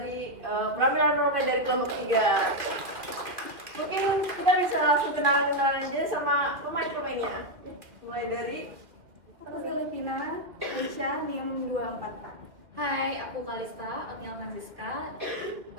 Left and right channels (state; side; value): late; left; 2.2 ms